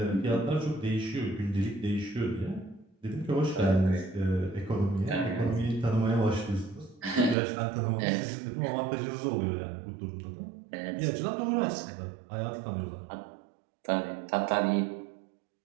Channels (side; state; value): left; drops out; at 7.4 s